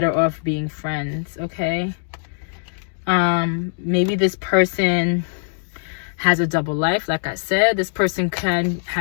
off being friends, okay? Maybe this person has a double life. Like I said, this person can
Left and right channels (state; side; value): silent; right; digital silence